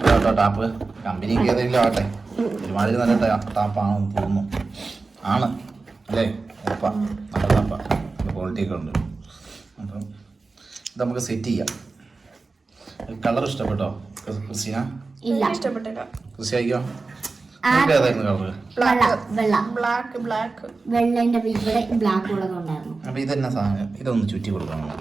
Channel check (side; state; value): left; quieter; 3.9 dB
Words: ടാപ്പ് കമ്പനിക്ക് ഏതെങ്കിലും ആവട്ടെ, ഒരുമാതിരി നല്ല ടാപ്പാണെന്ന് തോന്നുന്നു. ആണ് അല്ലേ? ഉറപ്പാ, നല്ല ടാപ്പാ, ക്വാളിറ്റി ഒക്കെ ഉണ്ട്. അപ്പം ഇത് നമുക്ക് സെറ്റ് ചെയ്യാം. കളർ ഇഷ്ടപ്പെട്ടോ ക്രിസ്റ്റീന? ഇല്ല, ഇഷ്ടപ്പെട്ടില്ല. ക്രിസ്റ്റി അയക്കോ? നിങ്ങൾക്ക് ഏതായിരുന്നു കളറ്? അപ്പൊ ഇതെന്നാ സാധനം? ഇതൊന്ന് ചുറ്റി കൊടുക്കണം.